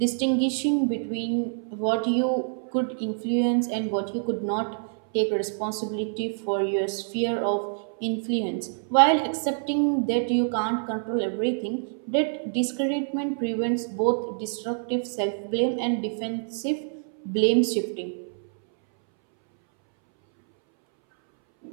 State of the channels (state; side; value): silent; left; 61 dB below the other